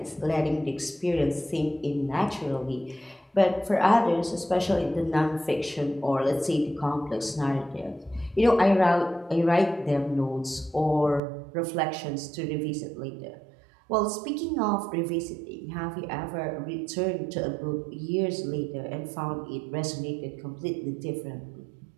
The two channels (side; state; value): left; drops out; at 11.2 s